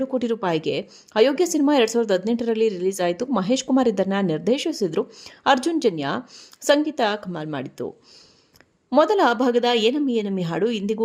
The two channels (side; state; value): both; identical; correlation 1.00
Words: ಕೋಟಿ ರೂಪಾಯಿಗೆ. ಅಯೋಗ್ಯ ಸಿನಿಮಾ 2018ರಲ್ಲಿ ರಿಲೀಸ್ ಆಯಿತು. ಮಹೇಶ್ ಕುಮಾರ್ ಇದನ್ನ ನಿರ್ದೇಶಿಸಿದ್ರು. ಅರ್ಜುನ್ ಜನ್ಯ ಸಂಗೀತ ಕಮಾಲ್ ಮಾಡಿತ್ತು. ಮೊದಲ ಭಾಗದ ಏನಮ್ಮಿ ಏನಮ್ಮಿ ಹಾಡು ಇಂದಿಗೂ